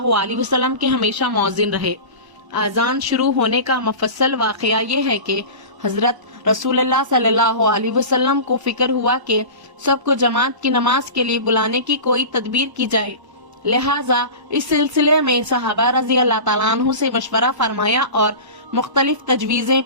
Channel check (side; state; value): left; late; 1.0 ms